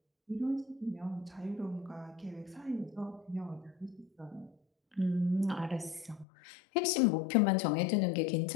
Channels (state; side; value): drops out; right; at 6.2 s